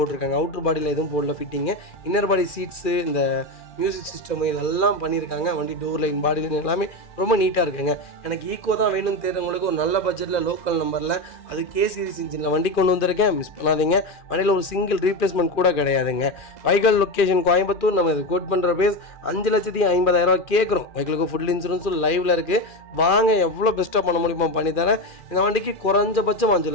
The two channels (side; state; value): right; late; 2.4 ms